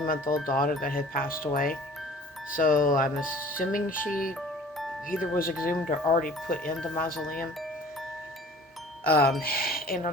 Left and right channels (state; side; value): normal; both; correlation 0.47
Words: daughter that had passed away. So I'm assuming she either was exhumed or already put in the mausoleum. Um, and